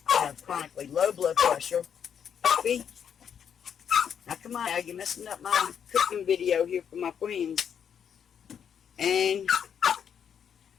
I have chronically low blood pressure. Puppy. Now come on now, you're messing up my cooking video here for my friends. And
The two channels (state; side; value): quieter; right; 8.0 dB